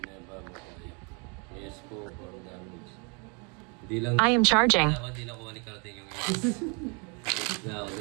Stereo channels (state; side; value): quieter; left; 33.8 dB